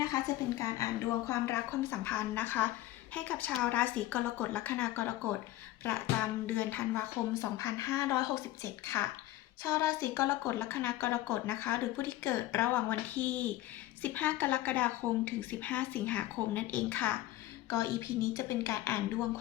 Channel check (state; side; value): quieter; right; 15.3 dB